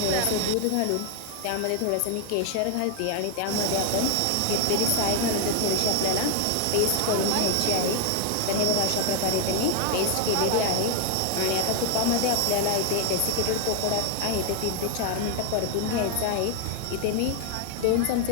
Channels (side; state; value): both; different; correlation 0.00